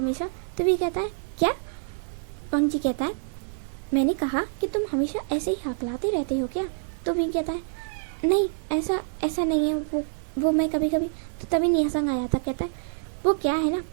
तो वी कहता है क्या? वांगजी कहता है मैंने कहा कि तुम हमेशा ऐसे ही हकलाते रहते हो क्या? तो वी कहता है नहीं ऐसा नहीं है, वो मैं कभी कभी। तो तभी निया संग आ जाता, कहता है वो क्या है ना,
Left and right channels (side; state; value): left; silent; digital silence